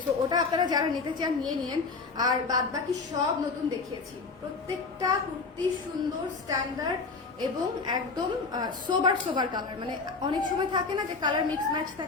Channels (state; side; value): quieter; right; 4.3 dB